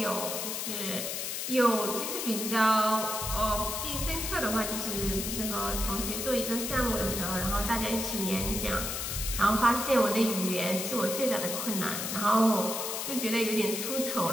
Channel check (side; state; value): left; noise; hiss, 3 dB below the sound